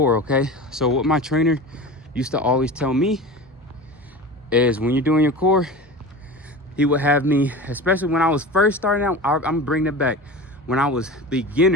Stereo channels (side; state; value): both; normal; correlation 0.32